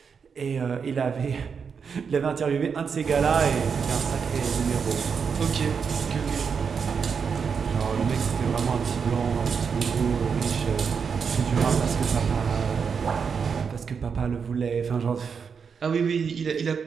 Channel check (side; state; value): left; quieter; 6.2 dB